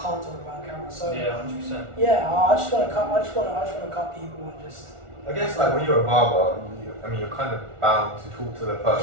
talk about on camera. So yeah, 100%. Yeah, I just want to cut. I just want to cut people and just. I guess like when you're a barber, you're kind of bound to talk to the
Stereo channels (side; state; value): left; late; 1.4 ms